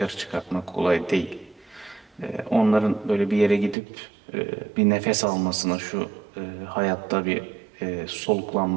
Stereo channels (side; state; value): left; drops out; at 3.8 s